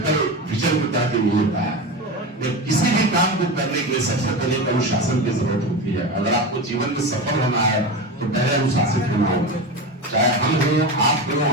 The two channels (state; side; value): normal; both; correlation 0.23